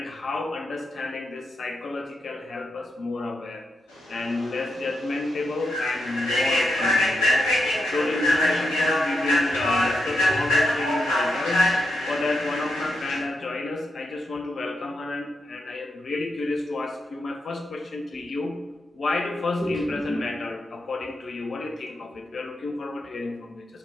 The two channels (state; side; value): normal; both; correlation 0.85